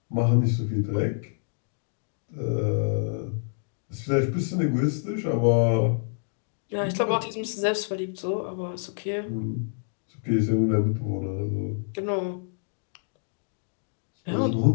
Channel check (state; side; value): silent; right; digital silence